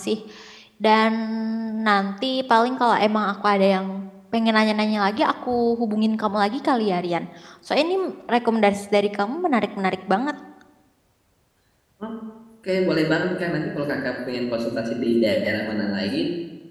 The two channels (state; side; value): identical; both; correlation 1.00